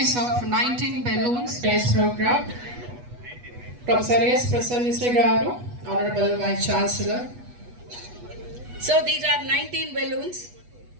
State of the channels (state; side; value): late; left; 8.2 ms